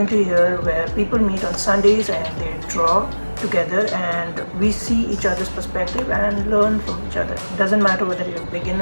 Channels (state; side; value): inverted; both; correlation -1.00